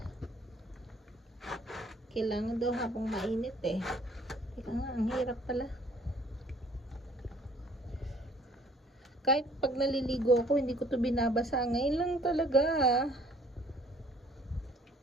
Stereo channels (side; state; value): both; normal; correlation 0.58